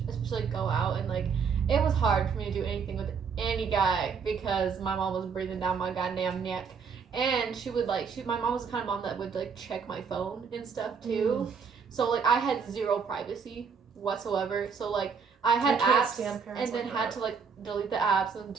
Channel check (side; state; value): left; quieter; 6.0 dB